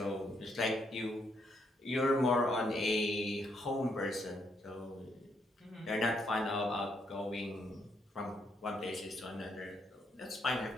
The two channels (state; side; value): normal; both; correlation 0.75